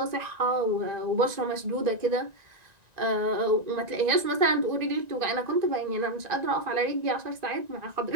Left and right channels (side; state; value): left; late; 1.9 ms